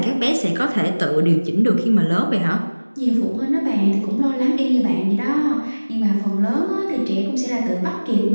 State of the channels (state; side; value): inverted; both; correlation -1.00